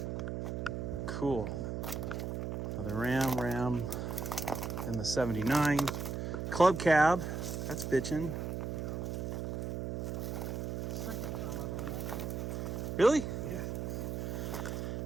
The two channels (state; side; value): noise; right; hum, 3 dB below the sound